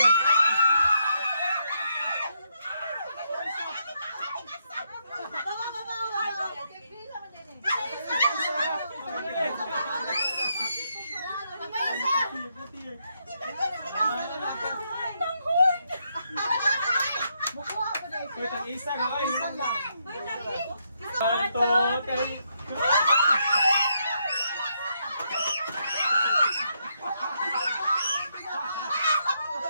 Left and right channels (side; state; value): both; inverted; correlation -0.78